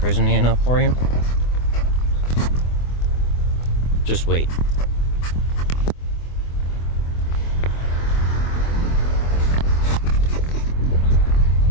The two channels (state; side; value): late; right; 24 ms